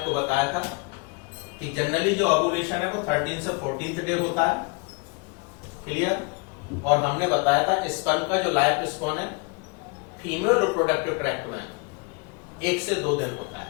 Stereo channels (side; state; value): right; quieter; 30.2 dB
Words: बताया था कि जनरली जो ओव्यूलेशन है वो 13 से 14th डे होता है, क्लियर। और हमने बताया था स्पर्म का जो लाइफ स्पैन है फीमेल रिप्रोडक्टिव ट्रैक्ट में 1 से 2 दिन होता